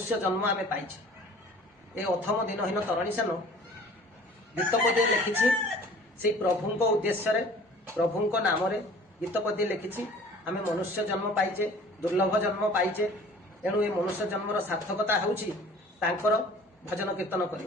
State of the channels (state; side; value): normal; both; correlation 0.48